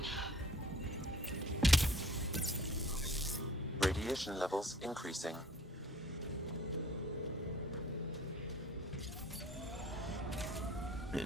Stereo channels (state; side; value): normal; both; correlation 0.52